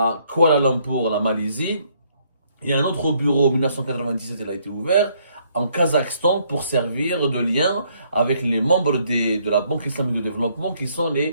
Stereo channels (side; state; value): both; inverted; correlation -0.68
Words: Kuala Lumpur, la Malaisie. Il y a un autre bureau, en 1997, il a été ouvert en Kazakhstan pour servir de lien avec les membres de la Banque islamique de développement qui sont